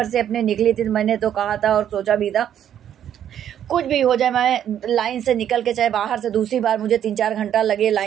से अपने निकली थी, मैंने तो कहा था और सोचा भी था कुछ भी हो जाए, मैं लाइन से निकल के चाहे बाहर से दूसरी बार मुझे 3-4 घंटा लगे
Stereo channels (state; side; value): quieter; left; 10.0 dB